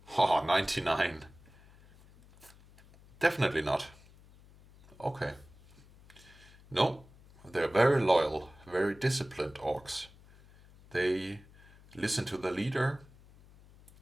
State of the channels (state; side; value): noise; left; hum, 24 dB below the sound